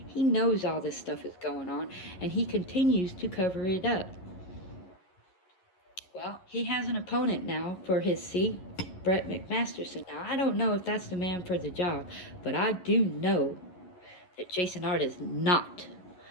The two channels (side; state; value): right; late; 11 ms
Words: He knows all this stuff is going on, and he continues to cover it up. Well, he has an opponent now for his seat, Brett McMasterson. Now, I don't know if that's the man for the job, but I do know that Jason Ard is not